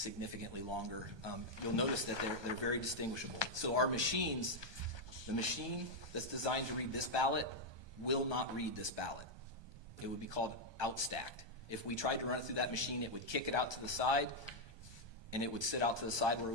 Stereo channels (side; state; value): left; late; 1.2 ms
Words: longer. You'll notice that they're very distinguishable. So our machines, the machine that's designed to read this ballot will not read this ballot. It would be called outstacked. If we tried to run it through that machine, it would kick it out to the side, and it would sit out to the side where